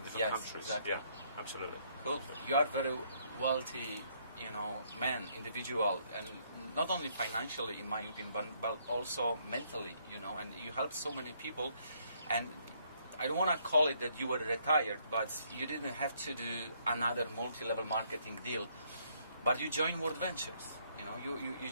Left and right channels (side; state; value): both; inverted; correlation -0.69